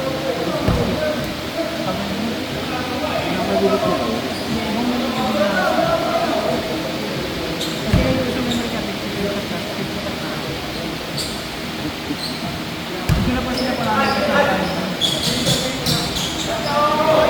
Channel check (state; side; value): identical; both; correlation 1.00